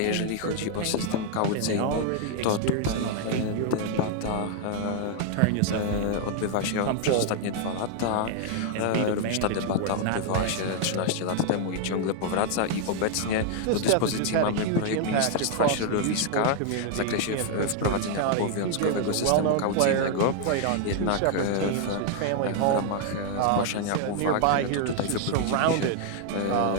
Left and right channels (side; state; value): both; different; correlation 0.00